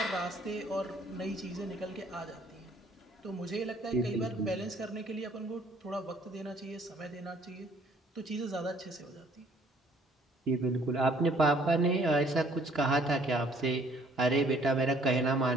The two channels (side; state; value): both; normal; correlation 0.61